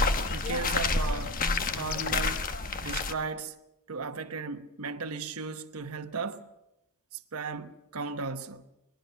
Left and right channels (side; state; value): both; normal; correlation 0.19